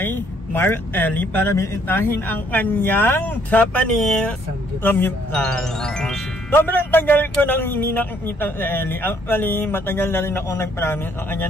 Mark Ellie para bisitahin ang kanyang Japanese samgyupsal. Sobrang tagal ko nang hindi nakikita si Ellie. Actually, matagal na rin ako nag-promise sa kanya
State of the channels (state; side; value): normal; both; correlation 0.66